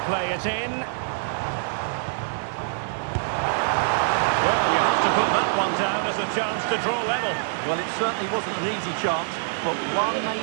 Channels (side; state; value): left; silent; 62 dB below the other